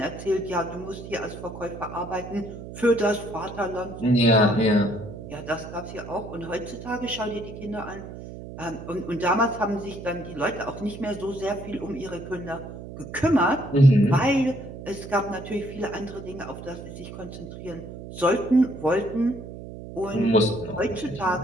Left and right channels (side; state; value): right; noise; hum, 12 dB below the sound